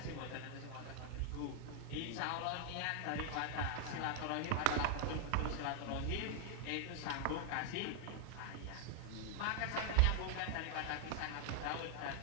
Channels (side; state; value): both; different; correlation 0.00